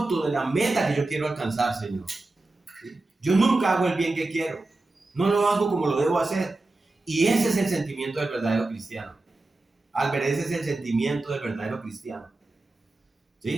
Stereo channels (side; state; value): left; quieter; 3.1 dB